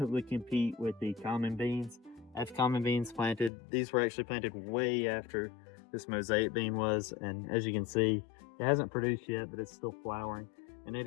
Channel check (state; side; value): drops out; right; at 3.5 s